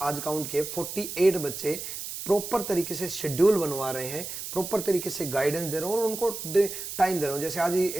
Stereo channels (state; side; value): noise; right; hiss, 7 dB below the sound